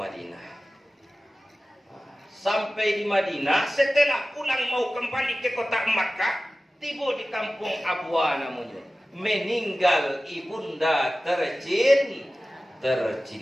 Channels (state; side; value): normal; both; correlation 0.96